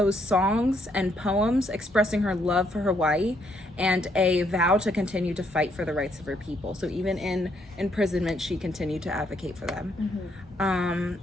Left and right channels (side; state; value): both; normal; correlation 0.72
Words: songs and poems expressing her love for Hawaii and a vow to continue to fight for the rights of her people. So even in imprisonment, she continued to advocate for them.